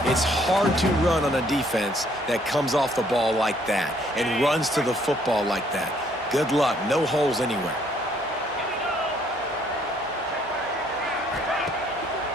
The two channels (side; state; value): both; normal; correlation 0.65